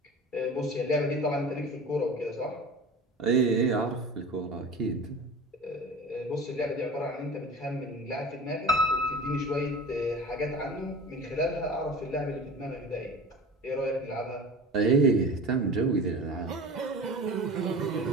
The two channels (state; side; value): normal; both; correlation 0.36